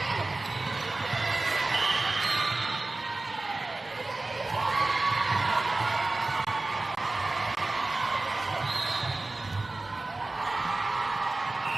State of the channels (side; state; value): left; quieter; 3.1 dB